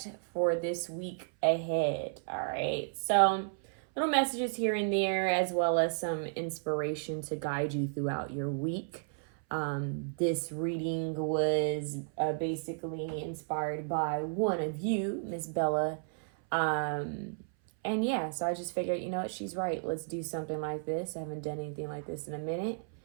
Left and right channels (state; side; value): silent; left; 56 dB below the other